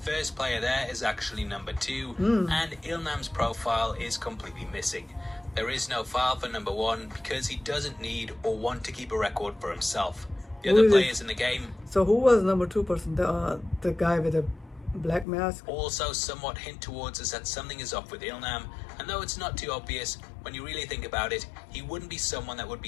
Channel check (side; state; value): right; drops out; at 15.2 s